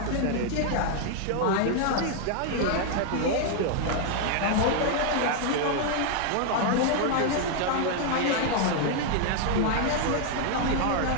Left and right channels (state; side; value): different; both; correlation 0.00